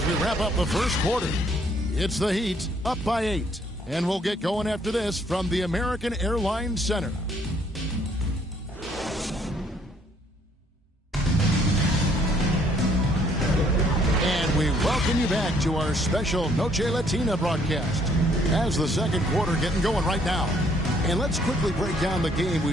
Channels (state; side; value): normal; both; correlation 0.65